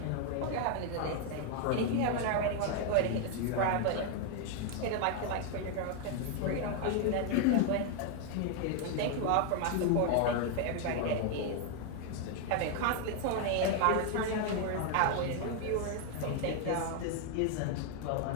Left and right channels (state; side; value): different; both; correlation 0.01